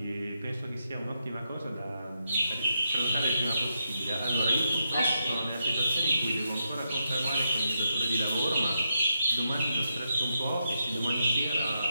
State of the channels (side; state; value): both; inverted; correlation -0.83